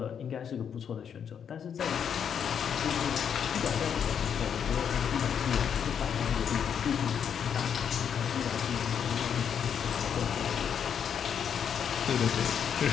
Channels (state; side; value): quieter; right; 7.9 dB